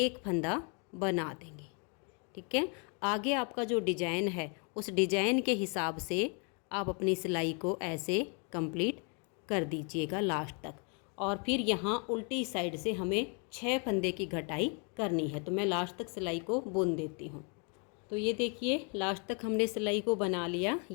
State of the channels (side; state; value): right; quieter; 37.0 dB